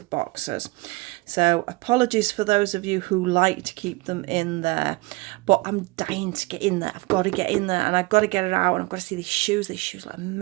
boxes. So apologies for those of you who like to keep them in there, but I'm dying to get in there. I've got to get in there and I've got to get it out, and I've got to see these shoes. These shoes look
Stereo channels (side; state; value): left; quieter; 23.5 dB